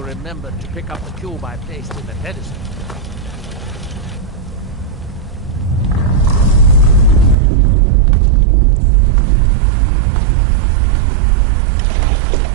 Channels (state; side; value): drops out; left; at 7.4 s